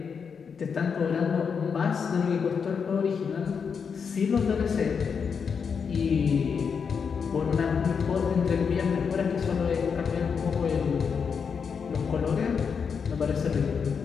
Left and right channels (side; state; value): right; quieter; 6.2 dB